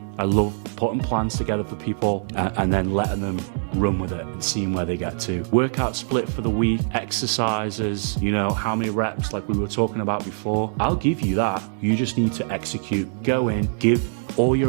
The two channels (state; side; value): silent; left; digital silence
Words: I love putting plans together for people and then letting them run with it and seeing where they get to. Workout split for the week, exercises, you know, how many reps like we were talking about before. I'll give you that. You just need to execute. Go in, give all